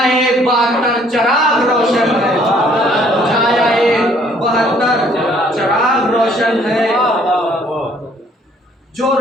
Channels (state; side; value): normal; both; correlation 0.61